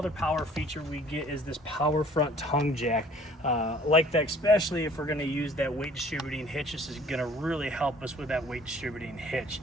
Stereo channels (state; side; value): normal; both; correlation 0.54